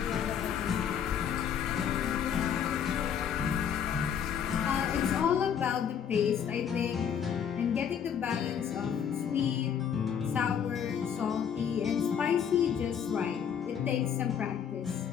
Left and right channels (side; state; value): right; quieter; 8.1 dB